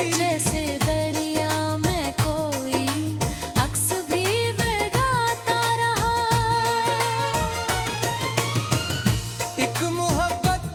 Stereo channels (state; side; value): identical; both; correlation 1.00